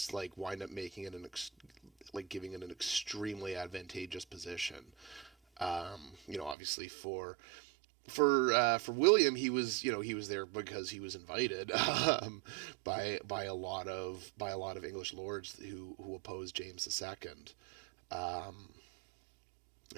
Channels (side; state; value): left; drops out; at 6.6 s